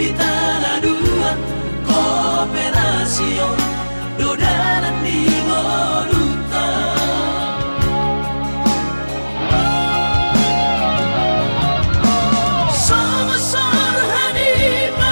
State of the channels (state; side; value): inverted; both; correlation -1.00